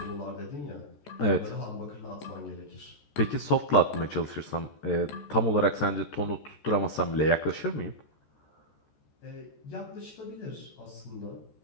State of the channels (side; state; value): right; late; 14 ms